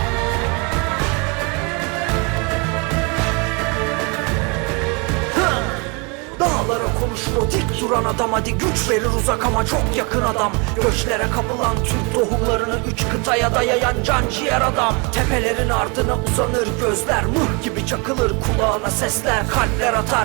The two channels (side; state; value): left; quieter; 31.2 dB